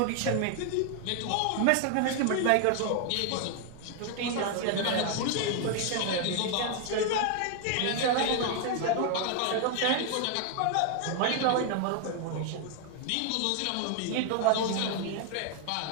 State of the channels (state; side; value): different; both; correlation 0.00